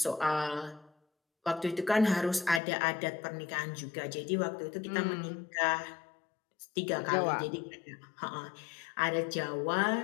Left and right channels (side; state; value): right; drops out; at 2.6 s